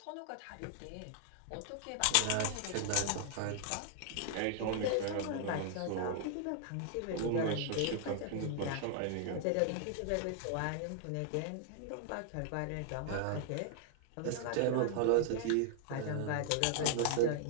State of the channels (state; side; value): different; both; correlation 0.00